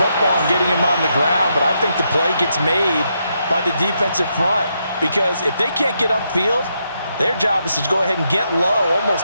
and getting him on the ground. But I think the play gets made by the defensive front. Because if they can't get upfield, their job is to go ahead and get low,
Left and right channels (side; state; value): both; inverted; correlation -0.80